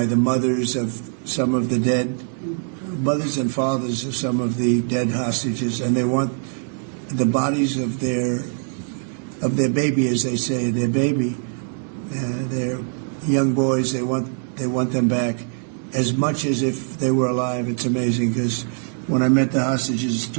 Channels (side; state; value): left; silent; 59 dB below the other